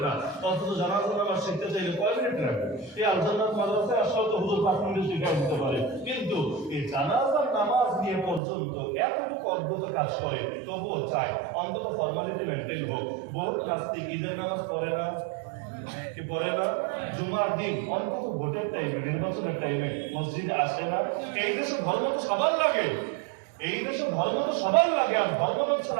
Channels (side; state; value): left; drops out; at 8.4 s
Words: না, অথচ জানাজার নামাজ শিখতে চাইলে কয় মিনিট লাগবে? এই আলজান্নাত মাদ্রাসায় আসলে তো হুজুর 5 মিনিটে শিখে দিতে পারে, কিন্তু এই জানাজার নামাজ নিয়ে পর্যন্ত এতটুকু অদ্ভুত কাজ করে, তবুও চায় অন্তত ফর্মালিটি মেনটেন হোক। বহুত নাস্তিক ঈদের নামাজ পড়ে না, কি পড়ে না, জুমার দিন অন্তত ভোটের টাইমে, নির্বাচনের টাইমে মসজিদে আসে না। এই দেশে ধর্ম তো সবার লাগে, এই দেশে ধর্ম তো সবার লাগে, আর ধর্ম হচ্ছে